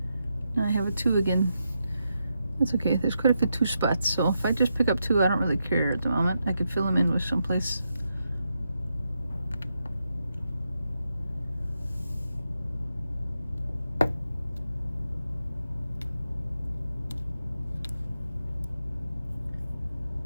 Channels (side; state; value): both; inverted; correlation -0.85